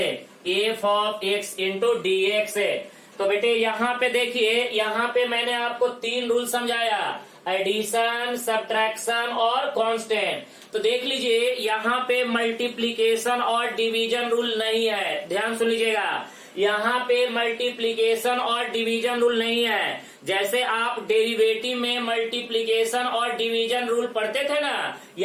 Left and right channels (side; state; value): both; identical; correlation 1.00